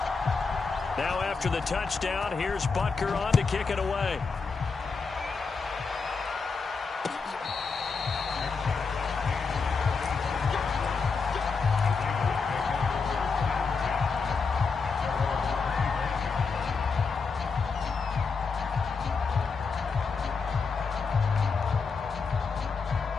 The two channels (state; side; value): quieter; right; 4.9 dB